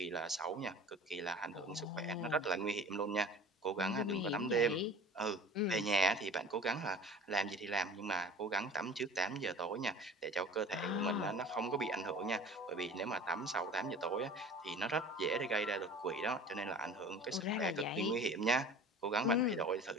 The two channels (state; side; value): normal; both; correlation 0.42